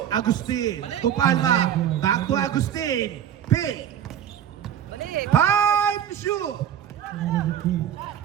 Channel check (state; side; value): quieter; left; 9.8 dB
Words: Agustin. To Palma. Back to Agustin. Pick. Time to shoot.